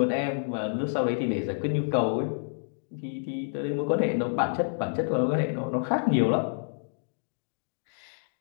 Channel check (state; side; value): silent; right; digital silence